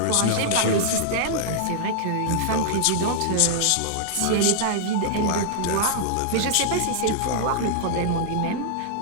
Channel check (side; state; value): both; different; correlation -0.01